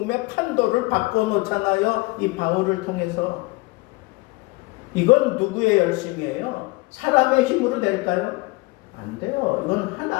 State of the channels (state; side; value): quieter; right; 24.3 dB